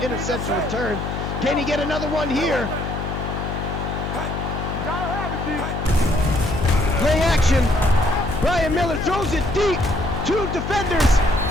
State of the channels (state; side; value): noise; left; hum, 4 dB below the sound